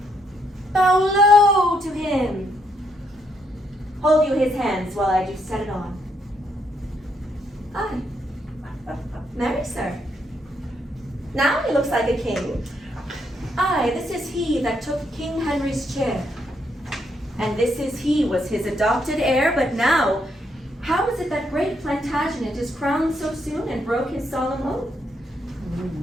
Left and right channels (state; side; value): normal; both; correlation 0.75